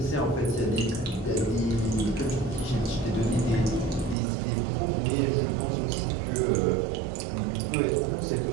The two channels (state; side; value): drops out; left; at 4.2 s